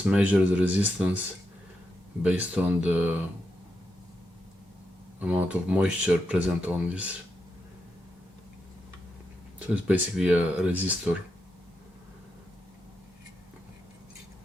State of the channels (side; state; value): both; normal; correlation 0.85